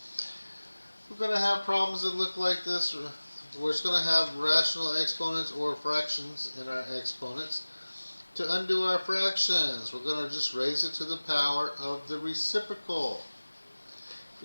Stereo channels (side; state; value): both; inverted; correlation -1.00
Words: We're going to have problems that look like this. We're just going to have rational exponents or fractions in our exponents. To undo our fractions, we're going to just raise it to the power of the reciprocal.